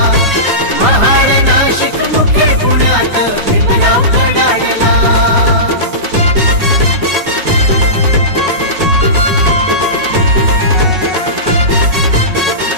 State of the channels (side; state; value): left; late; 5.4 ms